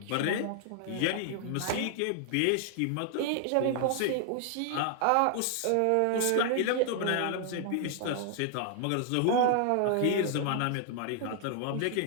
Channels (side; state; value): both; different; correlation 0.00